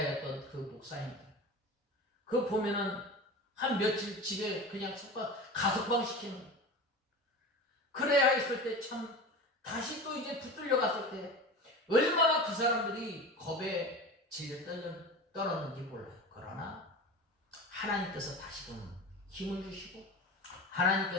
그 목사님들, 그 보면은 한 며칠 집에 그냥 가석방 시키는, 그래야 했을 때 참 다시 또 이제 붙들려 갔을 때 얼마나 그 사람들이 겁에 질려 떨었는지 몰라요. 그러나 하나님께서 다시금 힘을 주시고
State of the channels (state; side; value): normal; both; correlation 0.31